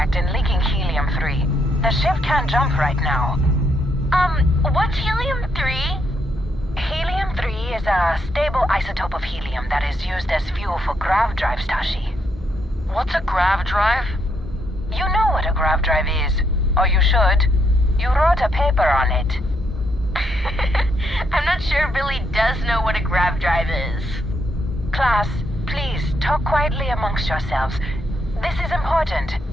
drives, Tashi. What's a grav drive? You know what a grav drive is. Or you should. You wrote a paper on it. I'm not sure Billy does know what a grav drive is. Class, please, talk quietly amongst yourselves. This is important.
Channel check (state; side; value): normal; both; correlation 0.76